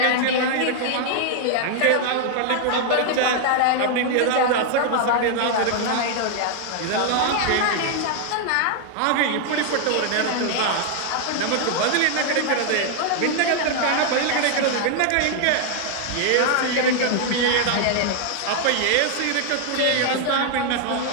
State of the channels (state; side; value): different; both; correlation 0.00